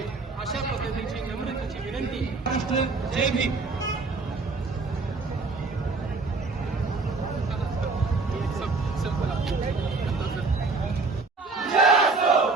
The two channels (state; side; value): quieter; left; 3.9 dB